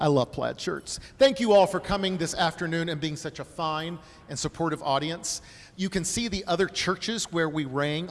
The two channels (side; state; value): both; identical; correlation 1.00